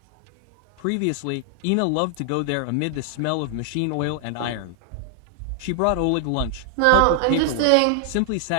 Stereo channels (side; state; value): both; different; correlation 0.00